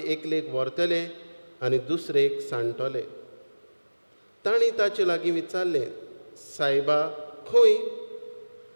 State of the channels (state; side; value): inverted; both; correlation -1.00